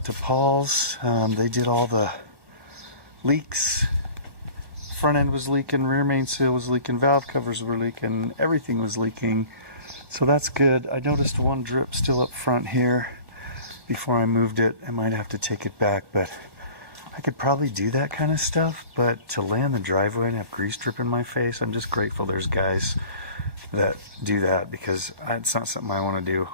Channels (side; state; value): left; late; 1.1 ms